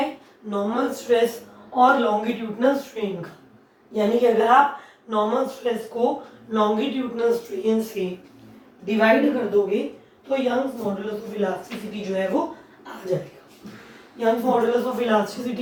नॉर्मल स्ट्रेस और लॉन्गिट्यूडनल स्ट्रेन का। यानी कि अगर आप नॉर्मल स्ट्रेस को लॉन्गिट्यूडनल स्ट्रेन से डिवाइड कर दोगे तो यंग्स मॉडुलस ऑफ इलास्टिसिटी जो है वो आ जाएगा। Young's modulus of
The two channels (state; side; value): identical; both; correlation 1.00